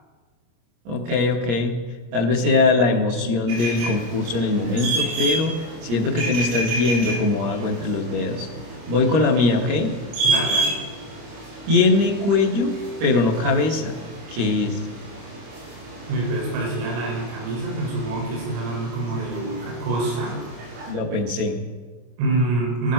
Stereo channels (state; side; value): late; left; 25 ms